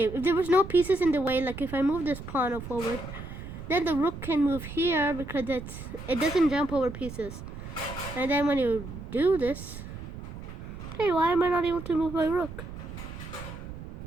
if there was no pieces in the way, like if I move this pawn forward, then the rook can move here because it doesn't jump over pieces. And then when you do this, hey, why am I not able to move my rook?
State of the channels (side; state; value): right; noise; rumble, 11 dB below the sound